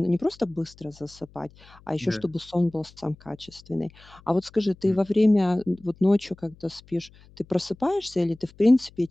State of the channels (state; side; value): noise; left; hum, 25 dB below the sound